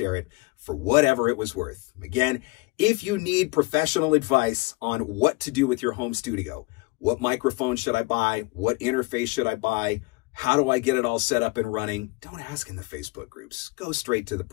it for whatever it was worth. Again, if you need professional advice on what to do with your home studio, what microphone should I buy? What interface should I buy? How do I get it all set up and running? Don't ask in the Facebook groups. Go straight to the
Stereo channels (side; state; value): right; quieter; 25.6 dB